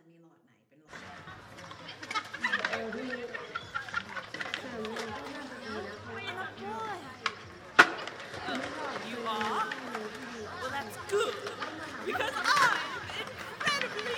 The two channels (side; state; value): both; identical; correlation 1.00